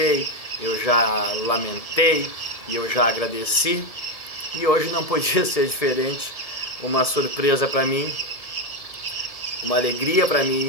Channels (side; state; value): right; late; 1.6 ms